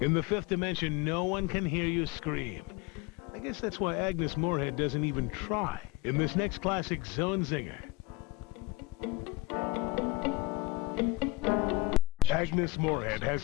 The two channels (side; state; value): right; quieter; 20.2 dB